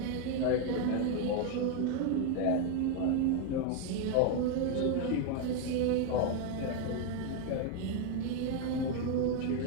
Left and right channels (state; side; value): different; both; correlation 0.01